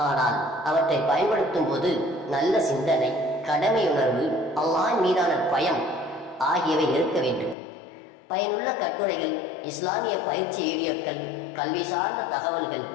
ஆனால் அவற்றை பயன்படுத்தும் போது நல்ல சிந்தனை, கடமையுணர்வு, அல்லாஹ் மீதான பயம் ஆகியவை இருக்க வேண்டும். பயனுள்ள கட்டுரைகள், இஸ்லாமிய பயிற்சி வீடியோக்கள், கல்வி சார்ந்த தகவல்கள்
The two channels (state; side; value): drops out; right; at 7.6 s